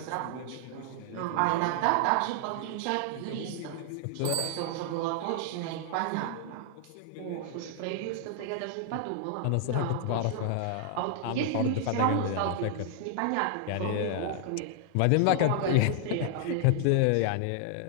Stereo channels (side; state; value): both; different; correlation -0.01